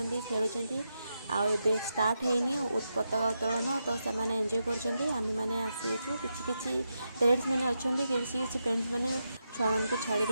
खेलुचंती। आउ एबे स्टार्ट हेनी पताका उत्तोलन। तो सेमाने एंजॉय करूचंती। आमे माने आसीचु किछि किछि पेरेंट्स माने अछंती, किछि किछि पेरेंट्स माने छुआ मान को छाड़ी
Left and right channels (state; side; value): inverted; both; correlation -0.86